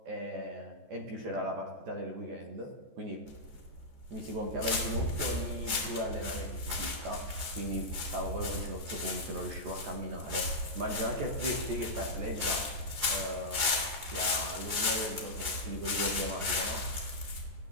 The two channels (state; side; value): late; left; 14 ms